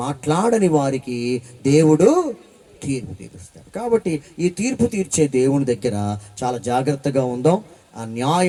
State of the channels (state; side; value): identical; both; correlation 1.00